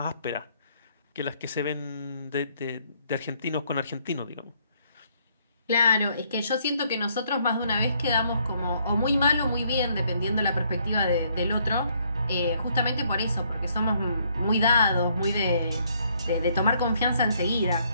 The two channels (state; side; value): inverted; both; correlation -0.68